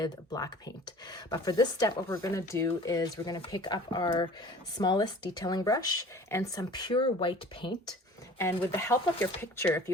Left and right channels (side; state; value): both; normal; correlation 0.45